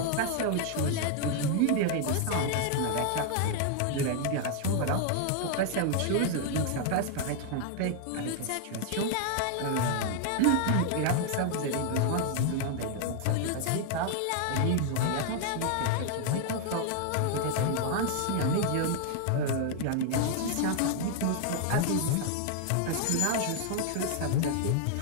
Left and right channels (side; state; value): both; different; correlation 0.00